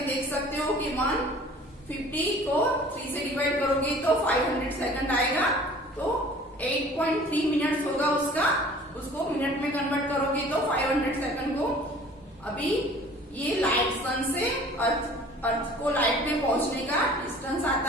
देख सकते हो कि 150 को 3 से डिवाइड करोगे तो 500 सेकंड आएगा। तो 8.3 मिनट्स होगा उसका। उसको मिनट में कन्वर्ट करोगे तो 500 सेकंड को। अभी ये लाइट सन से अर्थ को लाइट में पहुंचने का डिस्टेंस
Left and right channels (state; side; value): normal; both; correlation 0.48